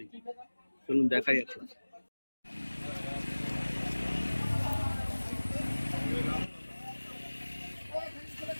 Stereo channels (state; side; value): inverted; both; correlation -1.00